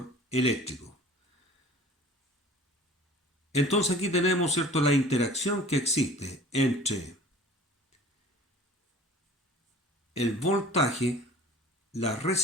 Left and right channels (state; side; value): normal; both; correlation 0.45